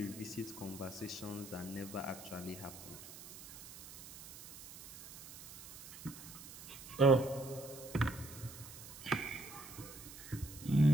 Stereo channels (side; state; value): right; noise; hiss, 14 dB below the sound